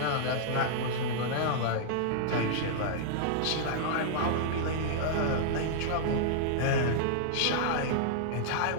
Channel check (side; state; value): both; different; correlation -0.02